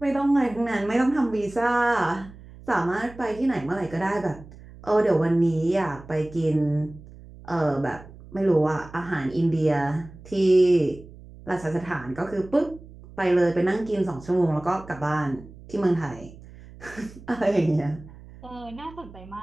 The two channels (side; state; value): right; noise; hum, 19 dB below the sound